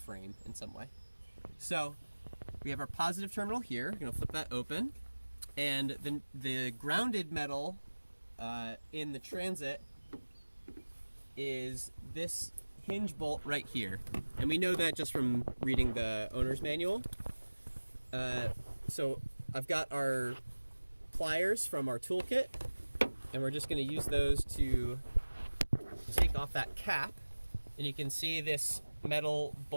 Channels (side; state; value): both; inverted; correlation -1.00